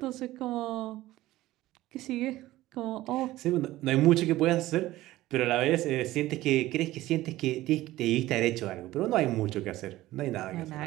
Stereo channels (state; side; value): quieter; left; 16.4 dB